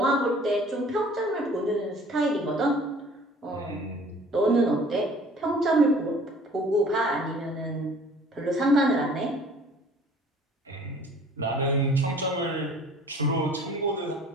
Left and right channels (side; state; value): both; normal; correlation 0.51